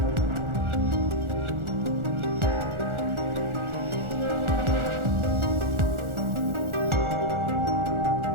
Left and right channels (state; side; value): late; left; 1.4 ms